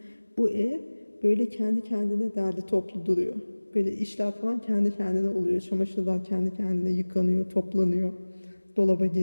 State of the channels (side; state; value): both; inverted; correlation -1.00